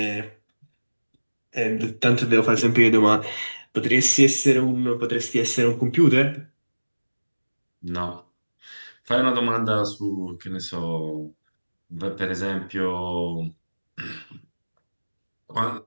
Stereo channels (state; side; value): inverted; both; correlation -1.00